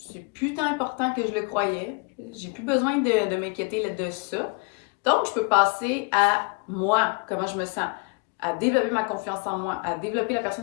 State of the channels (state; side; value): quieter; right; 33.9 dB